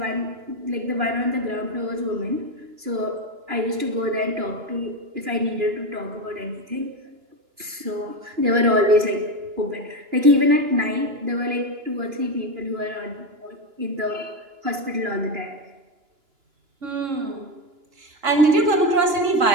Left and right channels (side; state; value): left; late; 2.9 ms